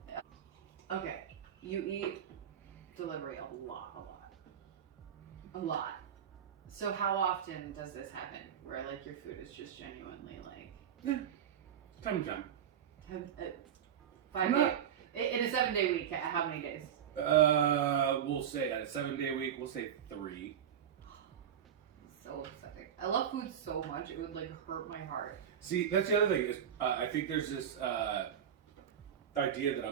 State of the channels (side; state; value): left; quieter; 9.0 dB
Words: Okay, you eat delivery a lot. So how often does this happen? Where like your food is just genuinely like Time to time. 5 days in a 7-day week? How many days? We'll say on a 7-day week, we'll say 3. So upsetting. I love food so much it would like hurt my heart. See, that's the other thing is I think there's this idea that